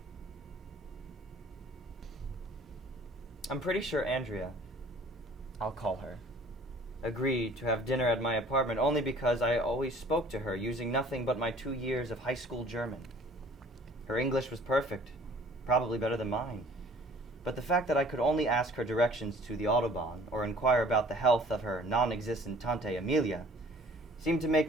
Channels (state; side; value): normal; both; correlation 0.52